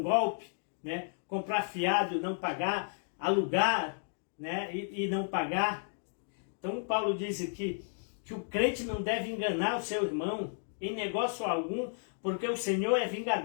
golpe, né? Comprar fiado e não pagar, alugar, né? e não pagar. Então Paulo diz aqui que o crente não deve enganar o seu irmão em negócio algum, porque o Senhor é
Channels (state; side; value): silent; right; digital silence